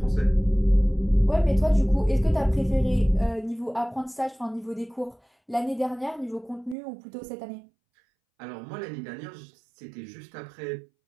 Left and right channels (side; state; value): left; drops out; at 6.8 s